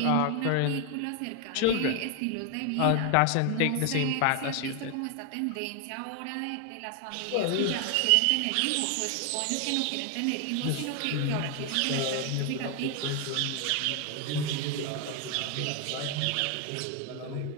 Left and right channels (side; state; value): both; different; correlation 0.00